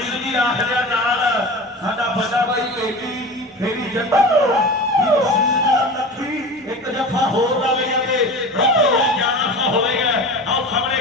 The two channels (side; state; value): both; normal; correlation 0.32